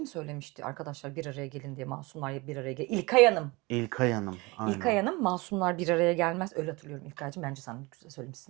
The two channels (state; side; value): quieter; left; 24.4 dB